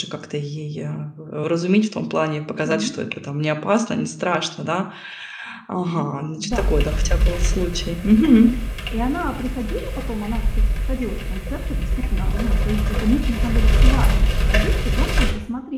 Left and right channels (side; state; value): both; identical; correlation 1.00